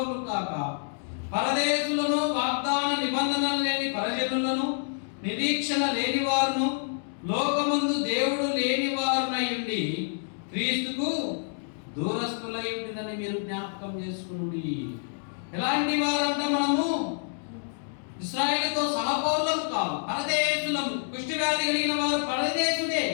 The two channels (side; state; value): right; silent; digital silence